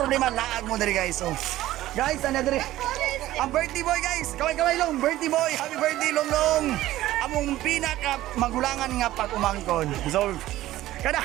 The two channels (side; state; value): left; quieter; 15.2 dB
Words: laag mo diri guys. So, guys, ano diri? Ang birthday boy guys, kaway long, birthday boy, happy birthday long. Among pinaka magulangan nga pag-umangkon. So, kada